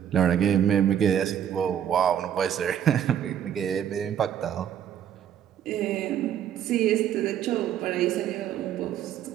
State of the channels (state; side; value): quieter; left; 9.6 dB